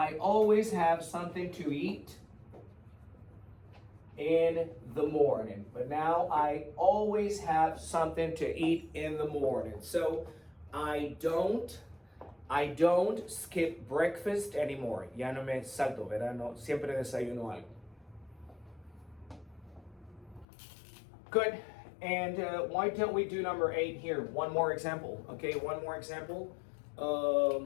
always have something to eat in the morning. But now I always have something to eat in the morning. So I don't skip breakfast anymore. Ya no me salto, ¿verdad? No, siempre desayuno algo. Good. And why don't we do number 8 here? One more example. Okay, one more example.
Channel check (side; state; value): right; drops out; at 20.5 s